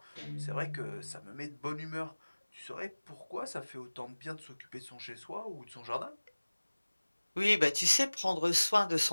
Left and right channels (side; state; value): both; inverted; correlation -1.00